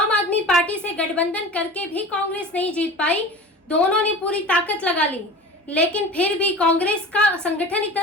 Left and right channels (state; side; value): normal; both; correlation 0.36